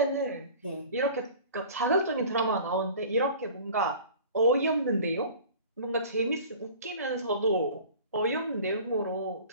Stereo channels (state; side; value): inverted; both; correlation -0.43